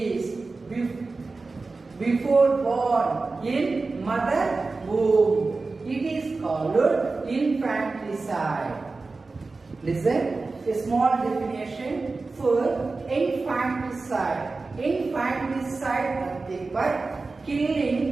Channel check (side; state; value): left; quieter; 3.8 dB